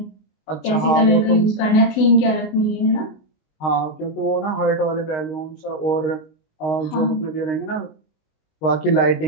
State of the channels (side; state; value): right; late; 19 ms